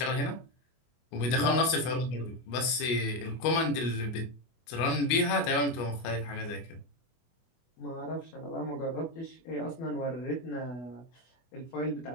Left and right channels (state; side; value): late; right; 24 ms